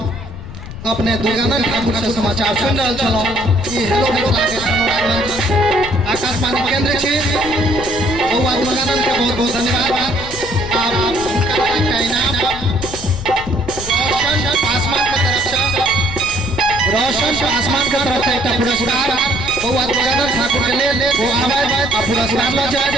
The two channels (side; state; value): left; noise; rumble, 11 dB below the sound